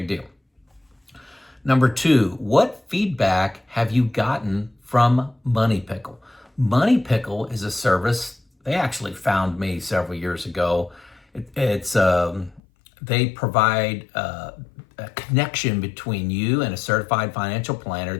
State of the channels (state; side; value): drops out; right; at 12.6 s